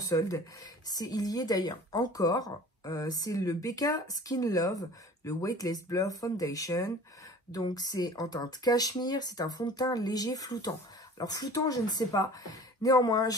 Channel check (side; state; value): both; normal; correlation 0.44